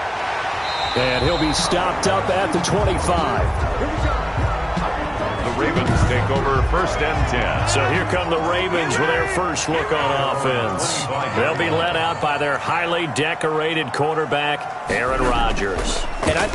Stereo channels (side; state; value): both; identical; correlation 1.00